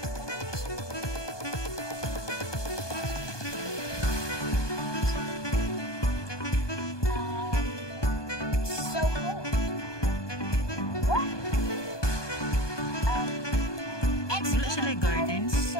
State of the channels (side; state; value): right; late; 1.2 ms